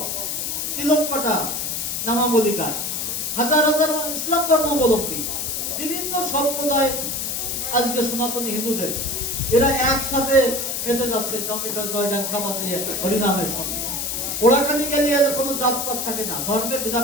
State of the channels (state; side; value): noise; left; hiss, 2 dB below the sound